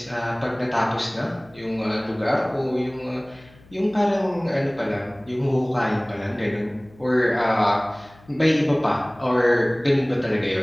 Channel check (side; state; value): left; noise; hum, 26 dB below the sound